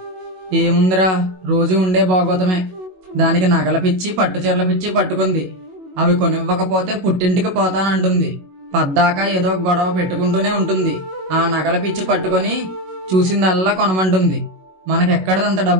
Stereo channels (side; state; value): left; late; 21 ms